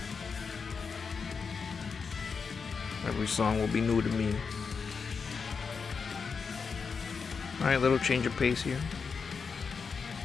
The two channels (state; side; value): quieter; right; 5.5 dB